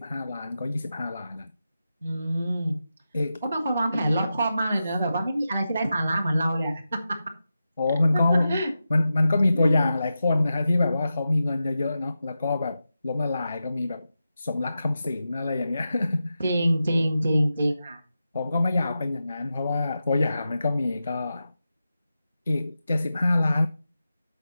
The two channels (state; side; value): inverted; both; correlation -0.91